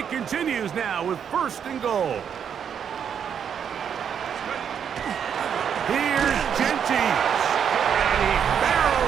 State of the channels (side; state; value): left; quieter; 7.9 dB